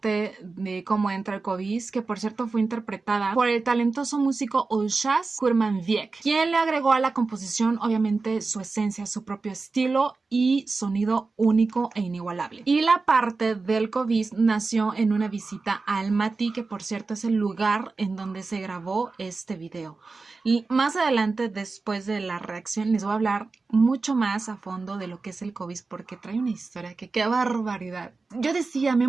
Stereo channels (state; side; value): quieter; left; 4.0 dB